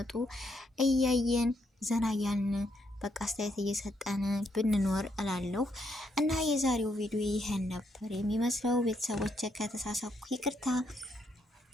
እያየን ዘና እያልን በቃ አስተያየት እየሰጠን ብንኖር እላለሁ። እና የዛሬው ቪዲዮ ይሄን ነበር የሚመስለው። ቤተሰቦች ከተሳሳኩ ይቅርታ።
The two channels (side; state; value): both; normal; correlation 0.76